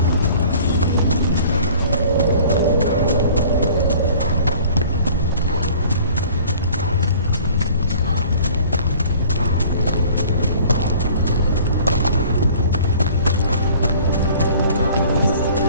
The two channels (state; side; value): inverted; both; correlation -0.49